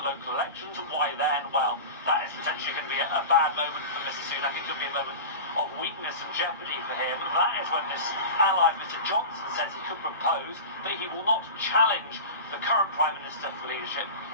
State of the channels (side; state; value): both; inverted; correlation -0.30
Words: local elections. And why then? Well, that is potentially going to be a bad moment for Mr Sunak. It could be a moment of weakness and jeopardy for him. That is when this ally, Mr Johnson, says he could propose that he will not challenge the current Prime Minister for leadership